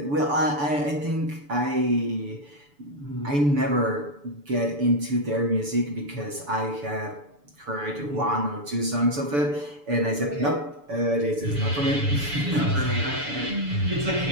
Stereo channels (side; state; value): left; late; 6.9 ms